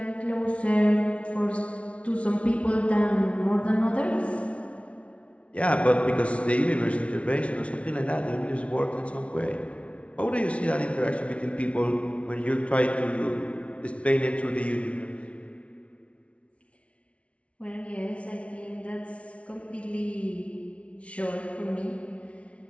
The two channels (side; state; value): right; late; 0.062 ms